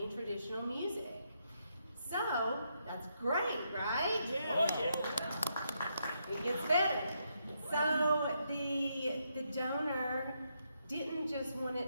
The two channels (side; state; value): both; inverted; correlation -0.79